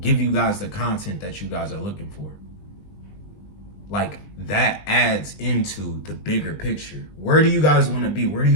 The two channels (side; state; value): right; late; 20 ms